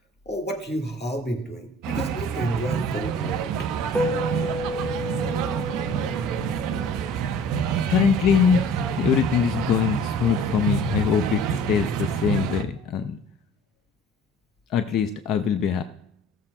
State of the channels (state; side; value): normal; both; correlation 0.48